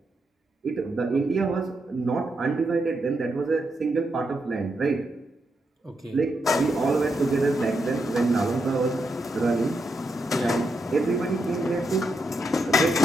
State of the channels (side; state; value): both; normal; correlation 0.83